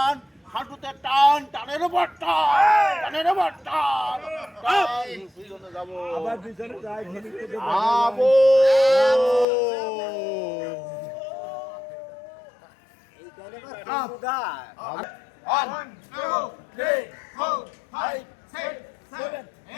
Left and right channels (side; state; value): right; drops out; at 9.5 s